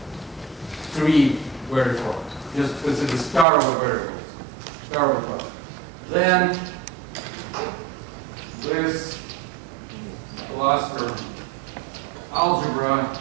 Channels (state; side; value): drops out; left; at 3.5 s